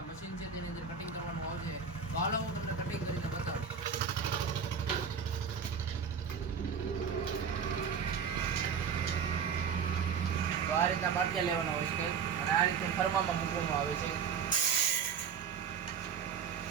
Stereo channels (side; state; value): left; quieter; 6.7 dB